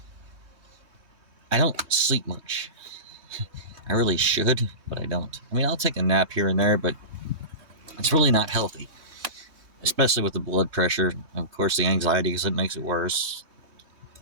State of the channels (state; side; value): late; left; 3.2 ms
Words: I don't sleep much. I really should, but I don't. I mean, I'll take a nap here and there, but it's really not healthy. Especially with the blood pressure. Of course, the anxiety, because it makes it worse.